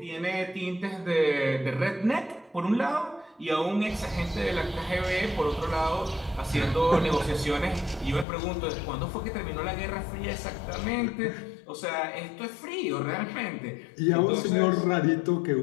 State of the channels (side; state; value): right; drops out; at 8.2 s